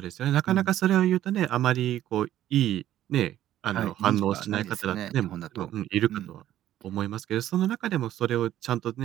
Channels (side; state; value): left; quieter; 12.6 dB